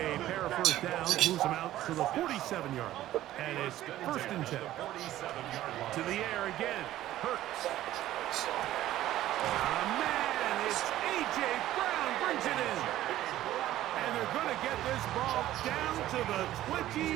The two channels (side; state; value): left; quieter; 14.0 dB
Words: pair of first downs moves him out to the 47-yard line. And it's first and 10. To the air again. Hurts. Man, it's A.J. Brown brings it in. And they're going to get this ball down to the